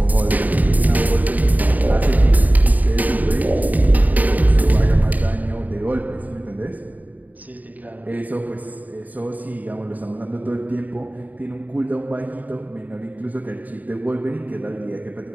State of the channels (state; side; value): late; left; 0.079 ms